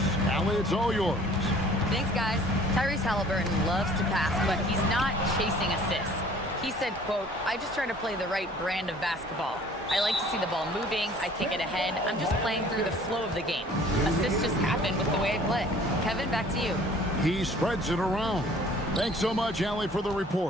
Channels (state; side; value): normal; both; correlation 0.52